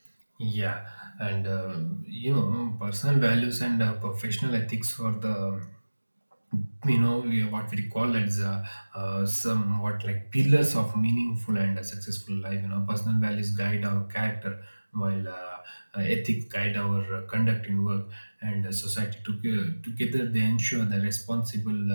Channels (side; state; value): both; inverted; correlation -1.00